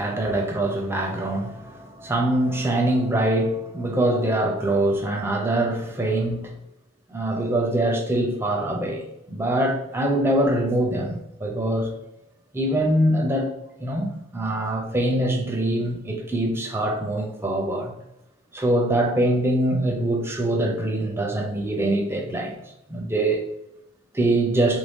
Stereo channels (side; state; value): both; normal; correlation 0.61